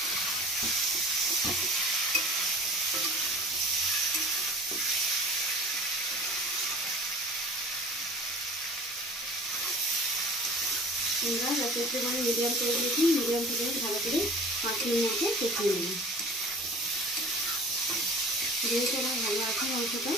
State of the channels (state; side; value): normal; both; correlation 0.42